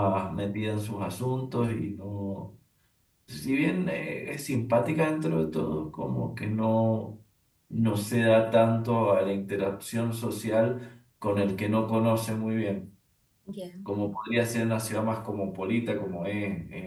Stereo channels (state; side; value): identical; both; correlation 1.00